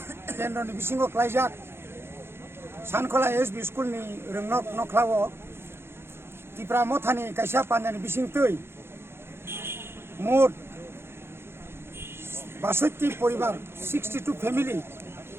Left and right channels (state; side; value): late; left; 0.12 ms